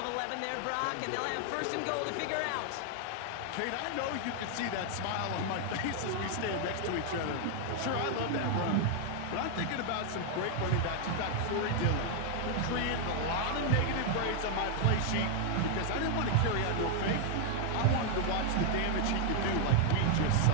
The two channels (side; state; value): both; different; correlation 0.00